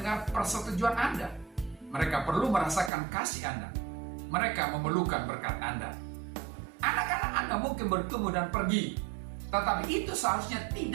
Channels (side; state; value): left; drops out; at 2.9 s